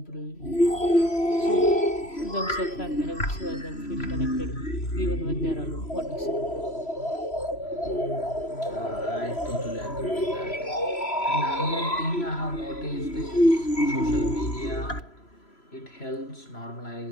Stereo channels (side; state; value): right; late; 3.0 ms